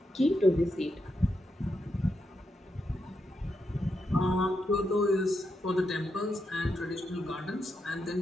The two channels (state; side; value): normal; both; correlation 0.83